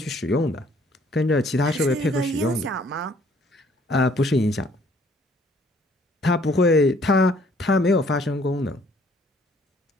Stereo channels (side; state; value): both; normal; correlation 0.61